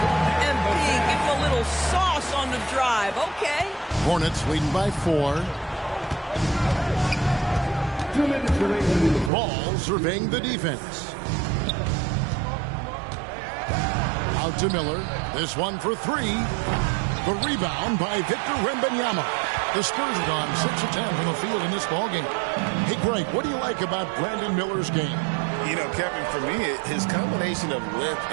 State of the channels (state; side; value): drops out; left; at 9.3 s